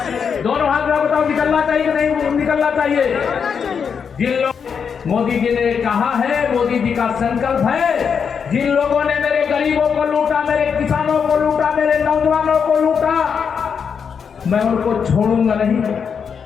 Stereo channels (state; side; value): quieter; right; 6.6 dB